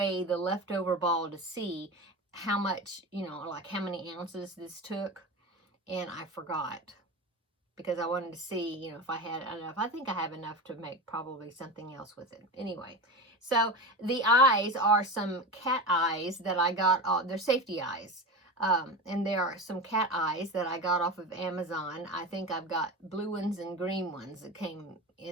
the leftover ball to see how much, like how many ounces this took, and I forgot because I wanted to see, if I had enough. I think I have enough to make probably something else with it. Anyway, so the eyes are some cat eyes that I got. They're safety eyes. And there are some cat eyes that I got off of Amazon. I think I've got blue ones and green ones that came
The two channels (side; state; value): both; normal; correlation 0.26